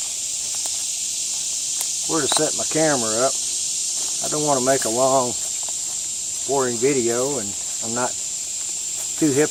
where to set my camera up. I don't want to make a long, boring video, and I'm not too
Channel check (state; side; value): identical; both; correlation 1.00